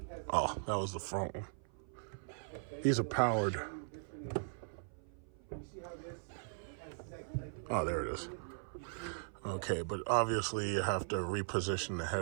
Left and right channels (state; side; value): silent; left; 52 dB below the other